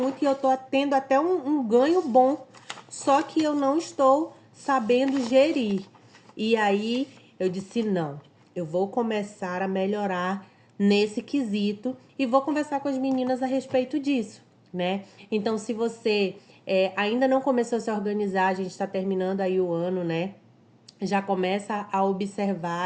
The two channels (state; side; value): identical; both; correlation 1.00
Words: e eu tô tendo até um ganho bom, só que eu não estou sabendo gerir. E aí eu disse, não, eu vou começar a melhorar nesse quesito e vou conversar com as meninas a respeito disso, né? Então, se você ainda não começou a se organizar, a gente está terminando aí o ano, né? Já começa a